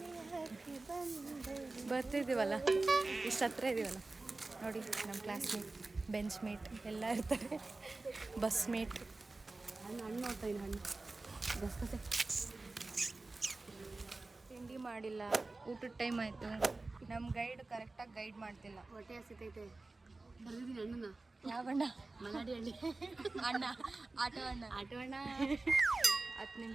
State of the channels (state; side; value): quieter; left; 3.3 dB